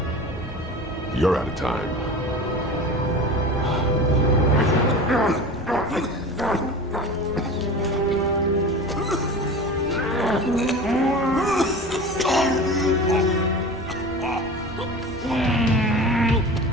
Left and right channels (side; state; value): both; normal; correlation 0.34